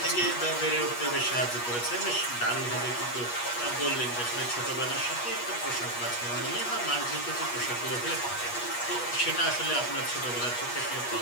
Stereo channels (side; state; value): right; late; 8.3 ms